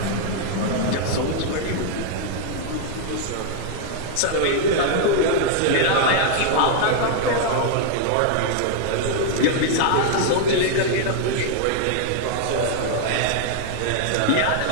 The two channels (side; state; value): both; different; correlation 0.00